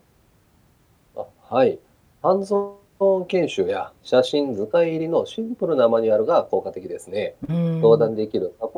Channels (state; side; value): identical; both; correlation 1.00